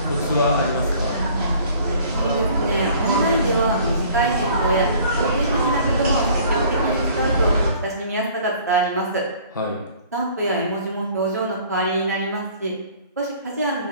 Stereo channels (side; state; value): both; inverted; correlation -0.53